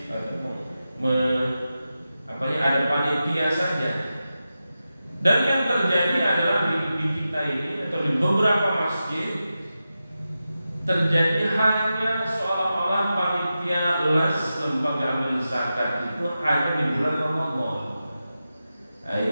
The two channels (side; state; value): both; inverted; correlation -0.92